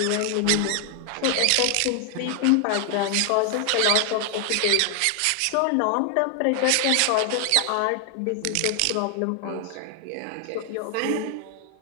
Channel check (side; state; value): both; different; correlation 0.00